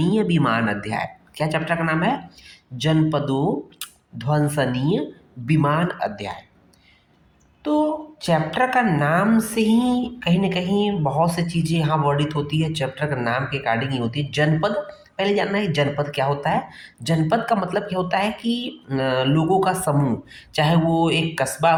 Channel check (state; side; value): identical; both; correlation 1.00